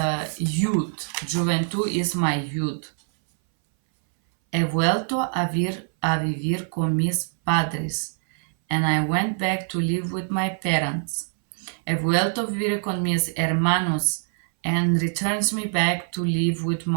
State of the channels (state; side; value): silent; left; 61 dB below the other